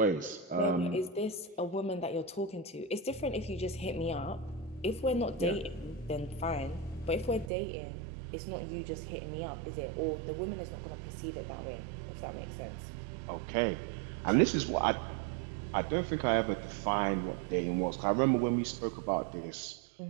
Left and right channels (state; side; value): drops out; left; at 7.5 s